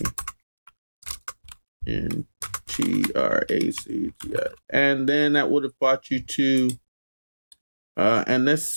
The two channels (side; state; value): both; inverted; correlation -1.00